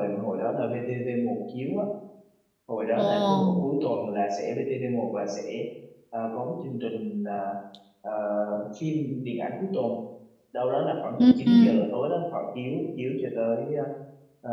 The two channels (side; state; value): both; identical; correlation 1.00